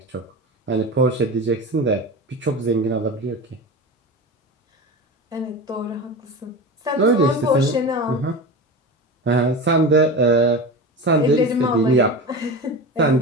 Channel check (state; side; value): normal; both; correlation 0.28